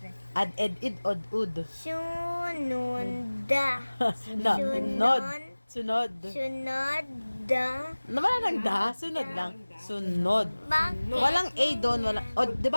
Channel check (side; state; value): both; inverted; correlation -1.00